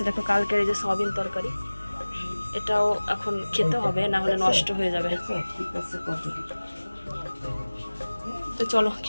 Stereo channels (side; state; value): both; inverted; correlation -1.00